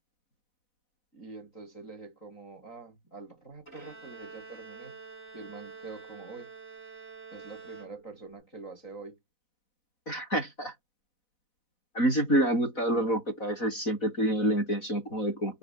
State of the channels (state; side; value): late; right; 4.1 ms